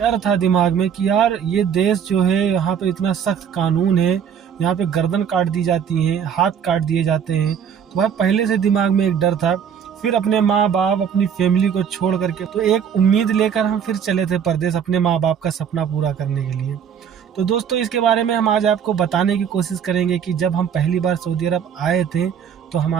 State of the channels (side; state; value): left; quieter; 7.9 dB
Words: था दिमाग में कि यार ये देश जो है यहाँ पे इतना सख्त कानून है, यहाँ पे गर्दन काट दी जाती है, हाथ काट दिए जाते हैं। तो भाई पहले से दिमाग में एक डर था। फिर अपने माँ बाप अपनी फैमिली को छोड़ करके तो एक उम्मीद लेकर हम फिर चले थे परदेश अपने माँ बाप का सपना पूरा करने के लिए। तो दोस्तों इसके बारे में हम आज आपको बताने की कोशिश करेंगे कि जब हम पहली बार सऊदी अरब आए थे तो